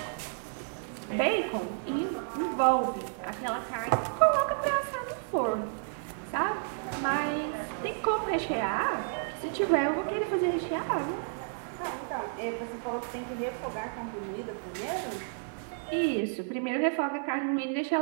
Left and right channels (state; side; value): silent; left; 57 dB below the other